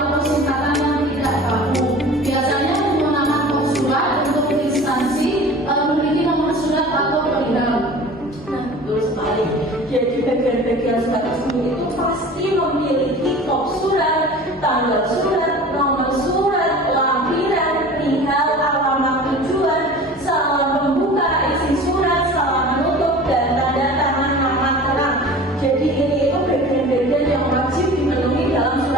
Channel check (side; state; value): both; normal; correlation 0.40